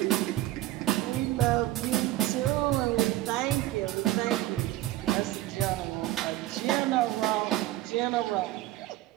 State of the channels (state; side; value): quieter; left; 15.6 dB